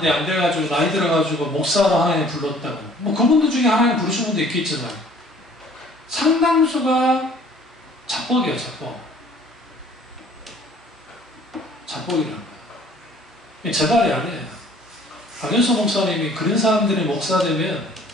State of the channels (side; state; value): both; normal; correlation 0.55